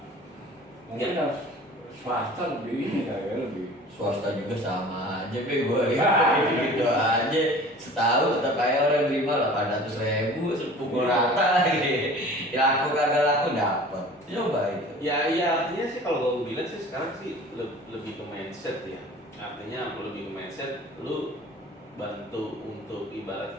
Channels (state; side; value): normal; both; correlation 0.44